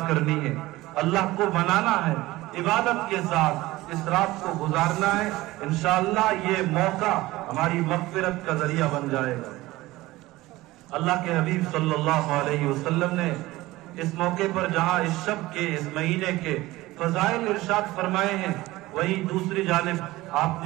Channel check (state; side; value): quieter; left; 18.5 dB